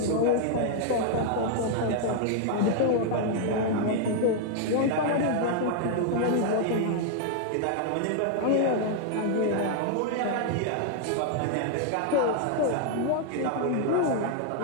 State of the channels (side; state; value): both; different; correlation 0.00